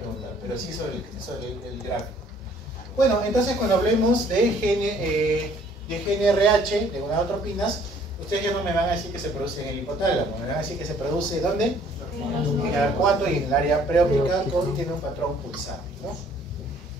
pero sí sobre el gráfico. Bueno, entonces cuando hablemos de GnRH, de gonadotropinas, ustedes ya no me van a decir que se produce en el hipotálamo, me van a decir que se produce ¿dónde? En el arcuato y en el área preóptica, tiene un patrón pulsante, ¿no?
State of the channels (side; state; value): both; normal; correlation 0.59